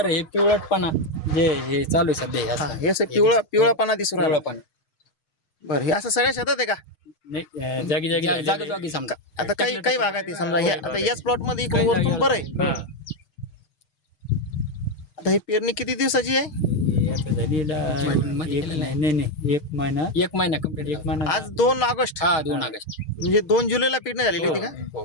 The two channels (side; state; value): right; late; 6.4 ms